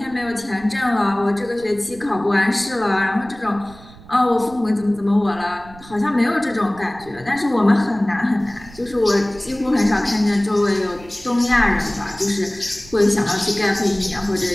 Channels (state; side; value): noise; right; rumble, 21 dB below the sound